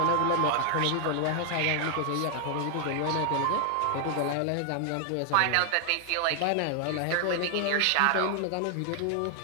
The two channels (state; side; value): different; both; correlation 0.00